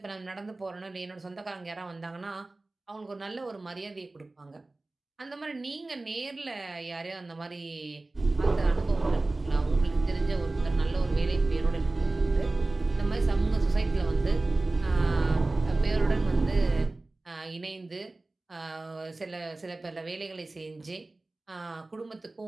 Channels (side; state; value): left; quieter; 3.0 dB